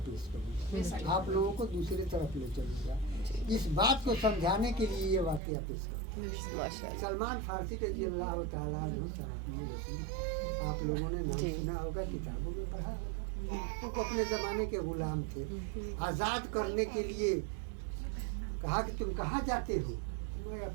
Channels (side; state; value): left; drops out; at 5.4 s